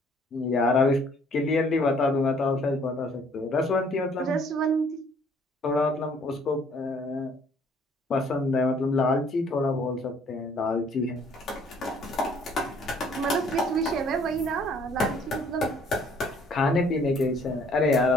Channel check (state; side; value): normal; both; correlation 0.60